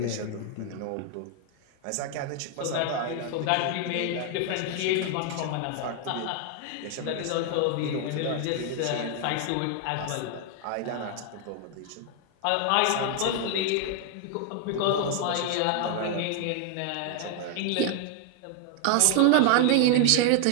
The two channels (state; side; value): different; both; correlation 0.00